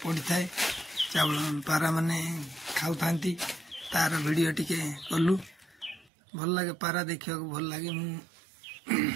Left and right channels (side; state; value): left; drops out; at 6.1 s